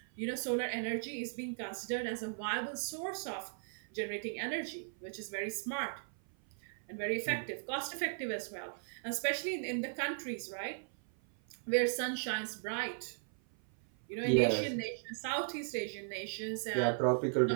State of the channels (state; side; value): silent; left; 53 dB below the other